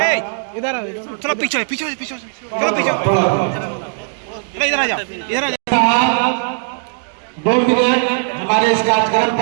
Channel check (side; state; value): left; silent; digital silence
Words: इधर आ, थोड़ा पीछे पीछे पीछे थोड़ा पीछे, इधर आ जाओ, इधर आ जाओ। 2 मिनट हमारे इस कार्यक्रम